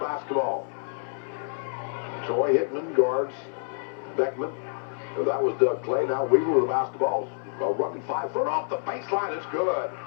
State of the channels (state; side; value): silent; right; 60 dB below the other